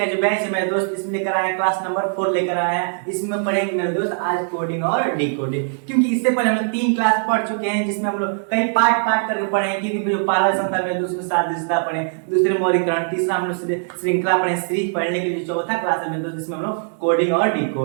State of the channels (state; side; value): silent; left; 65 dB below the other